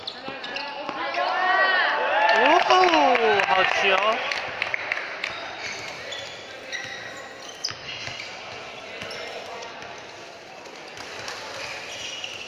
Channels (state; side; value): identical; both; correlation 1.00